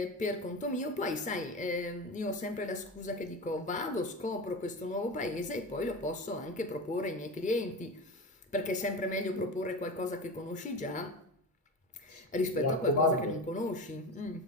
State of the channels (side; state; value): both; normal; correlation 0.27